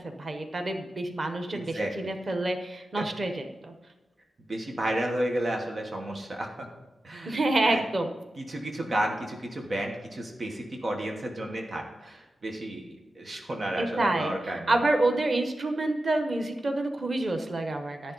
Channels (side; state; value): both; normal; correlation 0.92